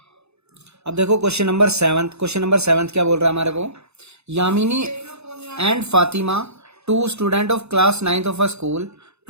अब देखो क्वेश्चन नंबर 7 क्या बोल रहा है हमारे को, Yamini and Fatima, 2 student of class 9th of a school,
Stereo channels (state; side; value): late; left; 0.80 ms